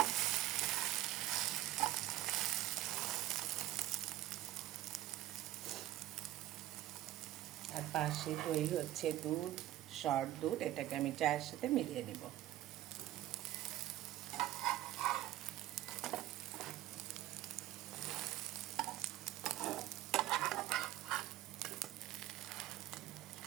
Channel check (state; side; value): quieter; left; 14.6 dB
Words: আর পাশে দই হচ্ছে দুধ, শর্ট দুধ, এটাকে আমি চায়ের সাথে মিলিয়ে নিব।